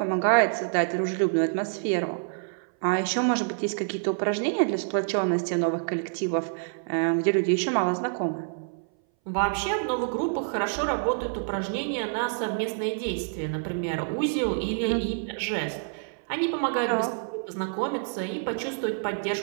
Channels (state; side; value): silent; left; 59 dB below the other